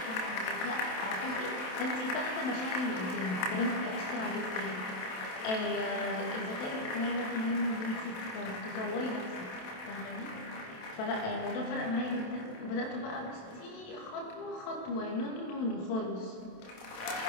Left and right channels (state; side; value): late; right; 27 ms